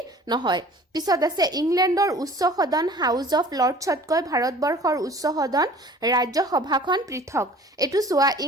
নহয় পিছত আছে ইংলেণ্ডৰ উচ্চ সদন হাউস অফ লৰ্ডছতকৈ ভাৰতবৰ্ষৰ উচ্চ সদন ৰাজ্যসভাখন পৃথক এটো চোৱা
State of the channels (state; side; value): normal; both; correlation 0.47